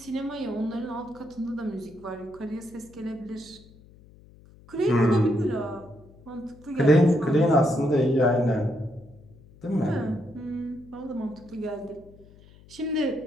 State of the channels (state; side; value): noise; left; hum, 24 dB below the sound